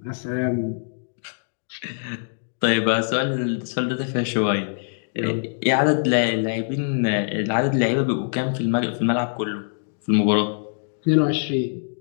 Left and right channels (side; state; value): right; silent; digital silence